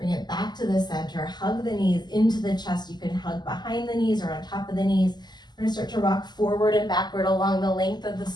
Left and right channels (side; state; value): right; late; 0.21 ms